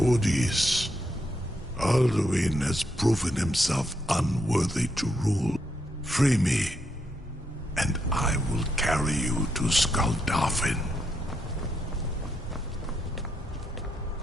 Alduin has proven himself unworthy to rule. Free me, and I will carry you to Skuldafn.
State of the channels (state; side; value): normal; both; correlation 0.79